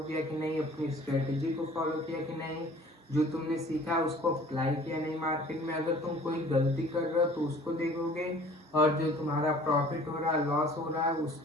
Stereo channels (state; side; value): normal; both; correlation 0.50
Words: किया कि नहीं, अपनी स्ट्रेटेजी को फॉलो किया कि नहीं, जो तुमने सीखा उसको अप्लाई किया नहीं मार्केट में। अगर तुम कोई गलती कर रहे हो तो उसको देखोगे और जो तुम्हारा प्रॉफिट हो रहा है, लॉस हो रहा है,